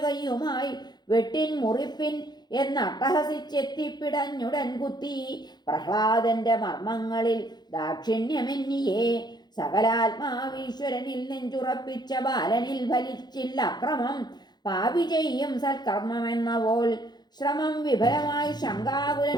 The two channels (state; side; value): late; right; 0.20 ms